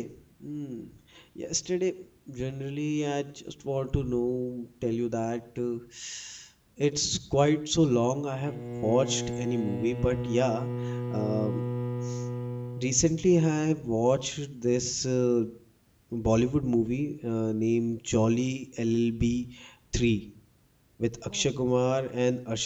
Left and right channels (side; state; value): both; identical; correlation 1.00